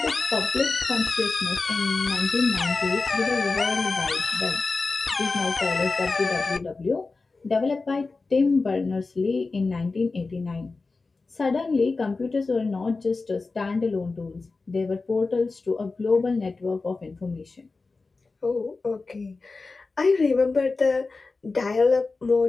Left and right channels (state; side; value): quieter; right; 3.9 dB